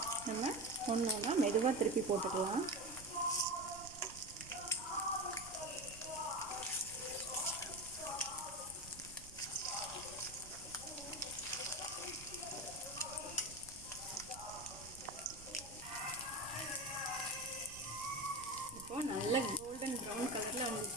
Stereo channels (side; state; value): right; noise; rumble, 16 dB below the sound